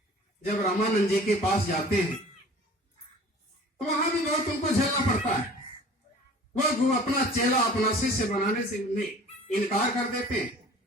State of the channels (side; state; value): both; normal; correlation 0.46